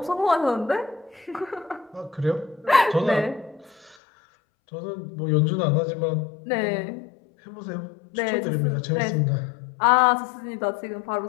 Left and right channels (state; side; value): drops out; right; at 4.0 s